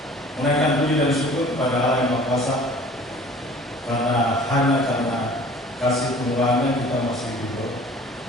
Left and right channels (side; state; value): both; normal; correlation 0.48